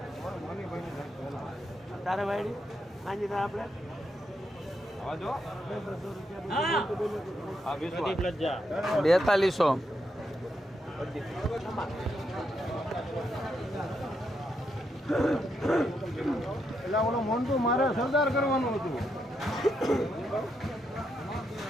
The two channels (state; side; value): normal; both; correlation 0.81